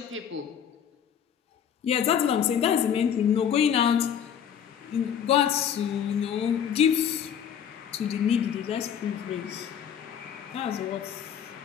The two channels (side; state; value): right; quieter; 8.5 dB